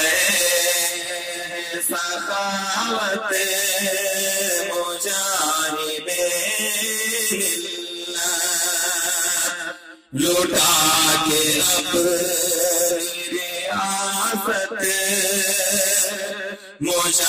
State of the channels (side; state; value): both; identical; correlation 1.00